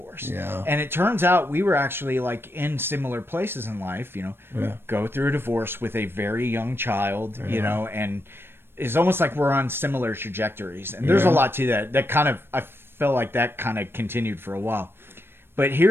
Yeah. And it turns out we were actually like in similar places in life, go through a divorce with a very young child, and it's almost like we're on similar trajectories. And there's a lot to that kind of, I felt like that kind of continued for a while. But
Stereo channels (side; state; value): left; late; 0.11 ms